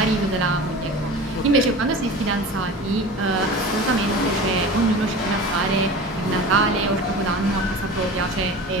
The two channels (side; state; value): both; normal; correlation 0.35